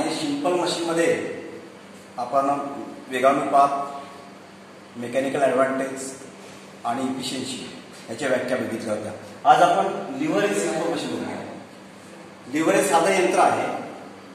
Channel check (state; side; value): identical; both; correlation 1.00